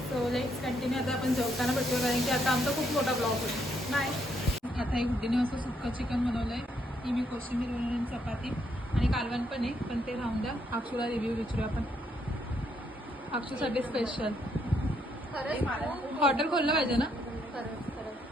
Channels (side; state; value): both; normal; correlation 0.74